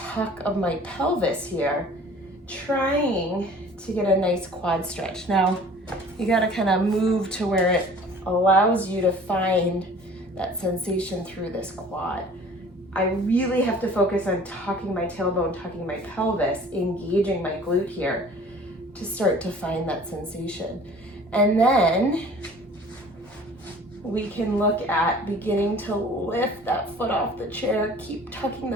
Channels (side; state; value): both; normal; correlation 0.48